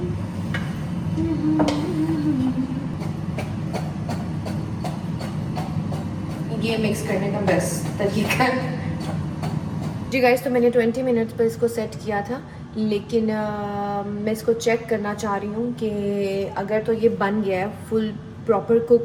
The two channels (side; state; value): both; identical; correlation 1.00